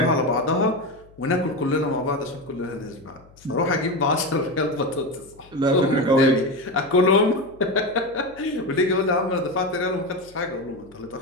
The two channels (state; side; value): noise; left; hum, 26 dB below the sound